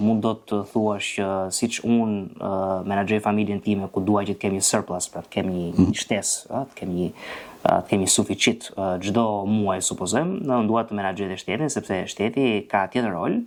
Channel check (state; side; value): identical; both; correlation 1.00